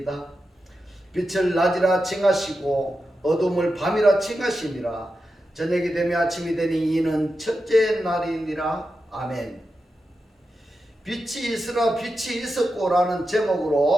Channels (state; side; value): normal; both; correlation 0.90